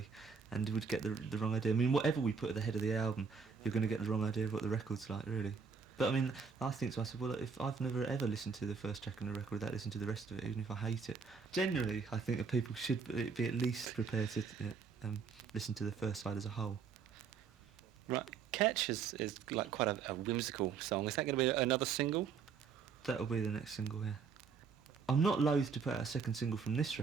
and would get the wrong idea. I mean, whatever we put at the head of the album, you're going to get the wrong idea of what the record's like, really. But I mean, I think to myself, well, if I've never ever listened to the first track on a record without listening to the rest of it, even if I hate it. Generally, I think that people should be at least prepared to listen to the first side as a whole. Right. Catch is like quite a whimsical song. Is that going to be another single? That'll be the next single, yeah. I'm not loath to put out a second single from this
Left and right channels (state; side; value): quieter; left; 5.7 dB